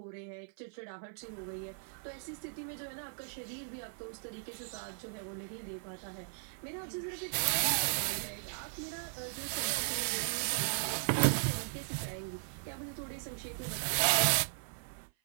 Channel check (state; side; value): silent; left; 53 dB below the other